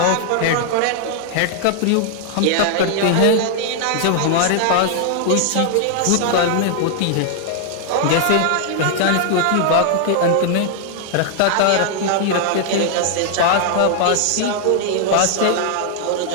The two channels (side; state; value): both; different; correlation 0.00